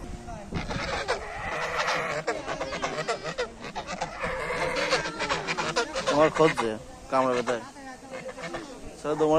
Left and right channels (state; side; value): identical; both; correlation 1.00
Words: তোমার খুঁজছে কামড়ে বেতায়। চলো